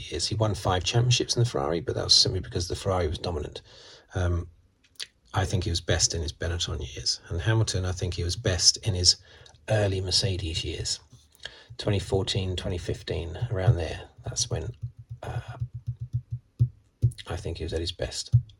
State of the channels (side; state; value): both; identical; correlation 1.00